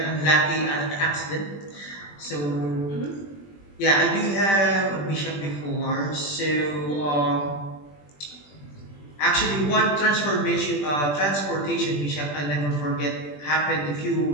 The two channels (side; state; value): right; late; 20 ms